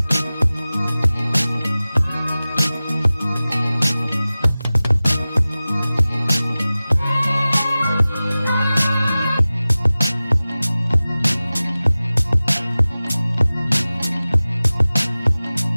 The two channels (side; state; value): both; inverted; correlation -0.97